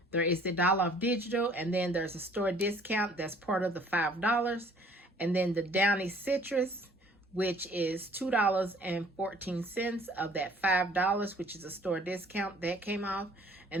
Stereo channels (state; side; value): normal; both; correlation 0.56